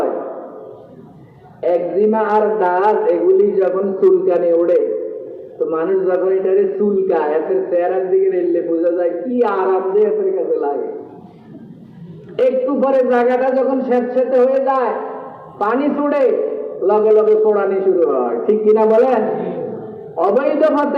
একজিমা আর দাঁত এগুলি যখন চুলকানি ওড়ে, তো মানুষ যখন এটারে চুলকায়, এদের চেহারার দিকে রেললে বোঝা যায় কি আরাম যে এদের কাছে লাগে। একটু পরে জায়গাটা যখন স্যাঁতস্যাঁতে হয়ে যায়, পানি ছুড়ে, লগে লগে পোড়ানি শুরু হয়। ঠিক কিনা বলেন? অবৈধ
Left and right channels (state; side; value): identical; both; correlation 1.00